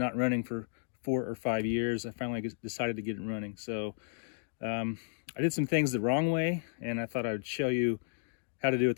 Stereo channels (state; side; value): silent; right; digital silence